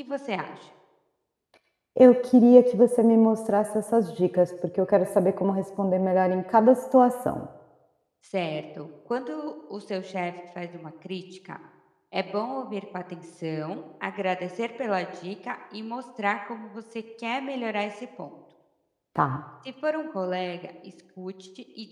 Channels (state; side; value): identical; both; correlation 1.00